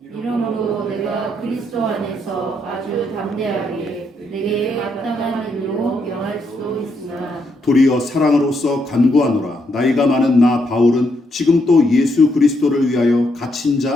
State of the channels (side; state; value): both; normal; correlation 0.77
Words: 이러므로 내가 그리스도 안에서 아주 담대하게 내게 마땅한 일로 명할 수 있으나, 도리어 사랑으로서 간구하노라. 나이가 많은 나 바울은 지금 또 예수 그리스도를 위하여 갇힌